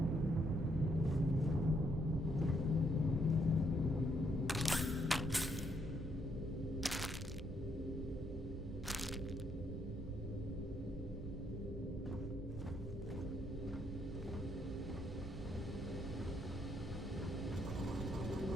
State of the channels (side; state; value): both; normal; correlation 0.74